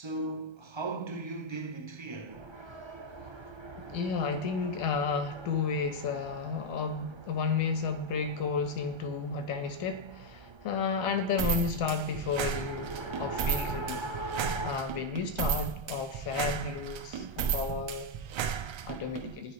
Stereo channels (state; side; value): late; left; 1.3 ms